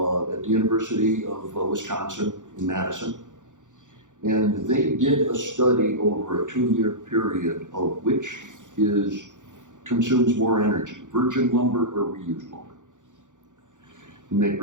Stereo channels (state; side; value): late; left; 0.86 ms